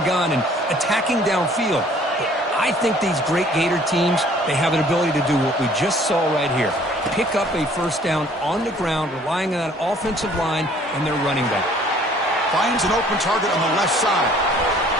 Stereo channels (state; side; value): normal; both; correlation 0.56